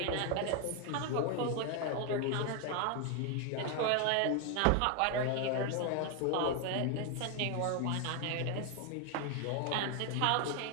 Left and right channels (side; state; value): both; different; correlation 0.01